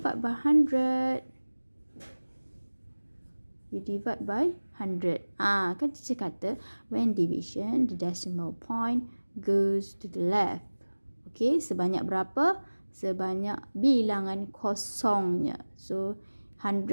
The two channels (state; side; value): inverted; both; correlation -1.00